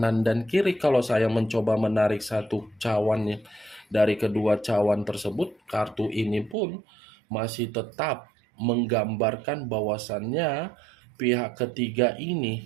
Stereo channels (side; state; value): left; drops out; at 6.6 s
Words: dan kiri. Kalau saya mencoba menarik satu cawannya dari kedua cawan tersebut, kartu ini pun masih tetap menggambarkan bahwasannya pihak ketiga